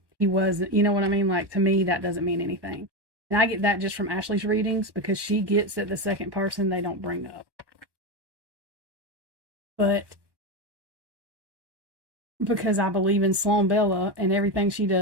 he wasn't, you know what I mean? Like, to me, that doesn't mean anything. And I get that just from Ashley's readings because she gets that the second person they don't bring up. But because I believe in Sloan Bella and everything she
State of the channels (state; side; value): late; left; 1.1 ms